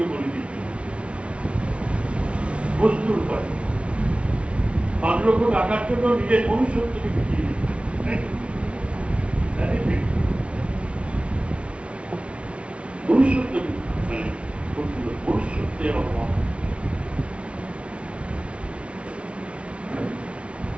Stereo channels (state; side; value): late; left; 0.060 ms